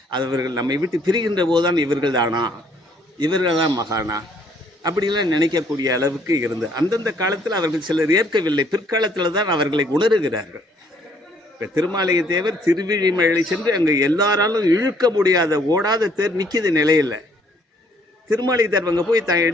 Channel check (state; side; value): normal; both; correlation 0.64